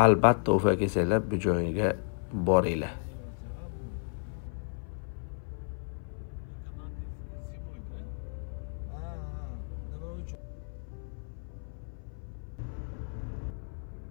Albatta Ufa kelsanglar bu joyga boringlar.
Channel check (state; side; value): silent; right; 56 dB below the other